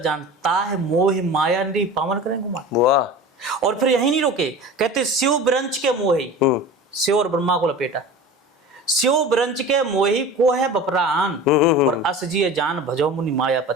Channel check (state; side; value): normal; both; correlation 0.35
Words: ताह मोह माया निरी पावन करें गुमान। वाह। और फिर यही नहीं रोके, कहते शिव ब्रंच के मोही, शिव और ब्रह्मा को लपेटा, शिव ब्रंच के मोही को है बपरान, और अस जिये जान भजो मुनि